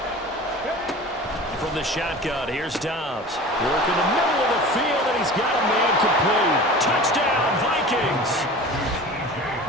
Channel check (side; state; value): both; normal; correlation 0.38